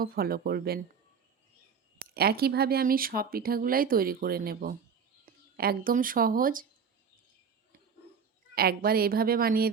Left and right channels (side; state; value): left; quieter; 6.4 dB